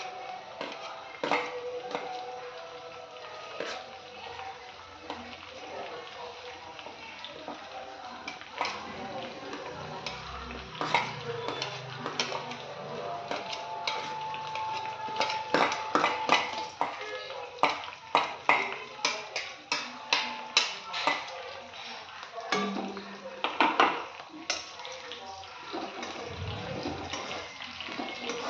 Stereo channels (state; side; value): identical; both; correlation 1.00